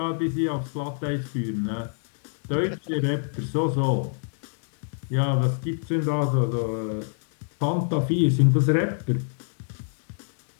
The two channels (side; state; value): right; silent; digital silence